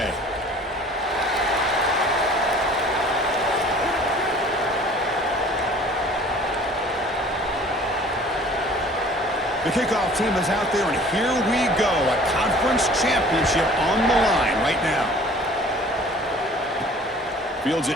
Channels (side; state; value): both; normal; correlation 0.49